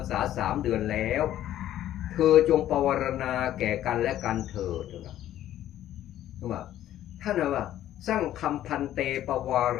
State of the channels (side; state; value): right; quieter; 12.5 dB